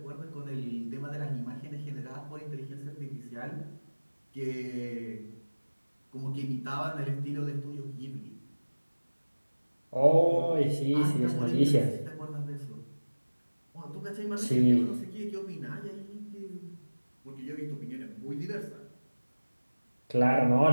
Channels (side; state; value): both; inverted; correlation -1.00